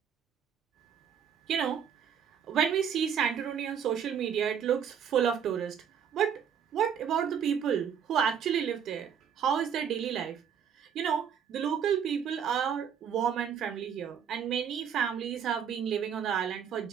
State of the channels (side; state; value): left; quieter; 8.0 dB